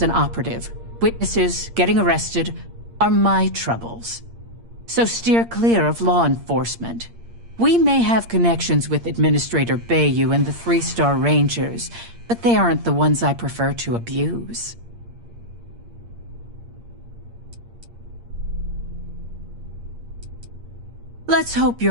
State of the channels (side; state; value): left; late; 8.6 ms